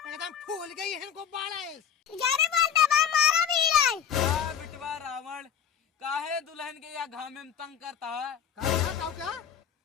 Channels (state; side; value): quieter; right; 8.2 dB